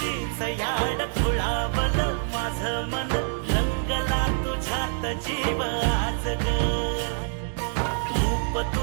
याड खुळावल माझं मन, रंगला तुझ्यात जीव आज ग. रूप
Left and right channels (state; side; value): silent; left; digital silence